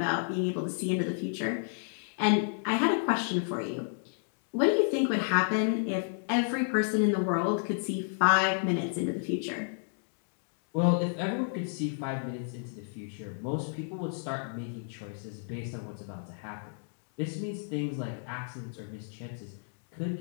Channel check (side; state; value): right; silent; digital silence